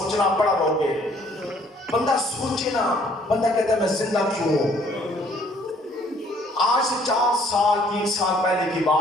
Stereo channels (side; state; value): both; normal; correlation 0.61